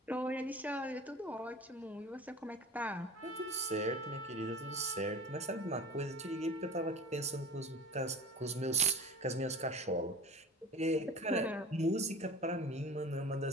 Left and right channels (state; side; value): normal; both; correlation 0.37